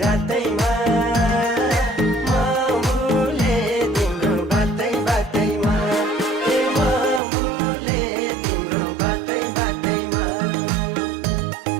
रातैमा म भुले तिम्रो बातै बातैमा म भुले तिम्रो बातै बातैमा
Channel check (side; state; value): left; drops out; at 7.2 s